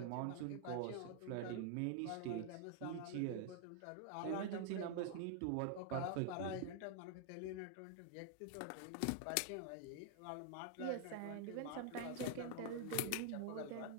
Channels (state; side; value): different; both; correlation 0.00